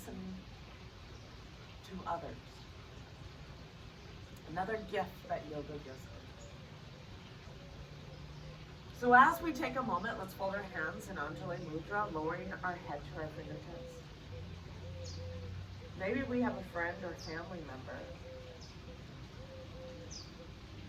to others. Another gift that yoga gives us. So as we take a moment, let's fold our hands in Anjali Mudra, lowering our head to our fingertips. Maybe we have a friend or family member.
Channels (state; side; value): identical; both; correlation 1.00